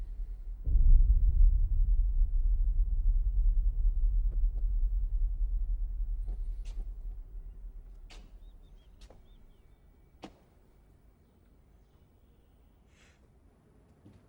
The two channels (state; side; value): identical; both; correlation 1.00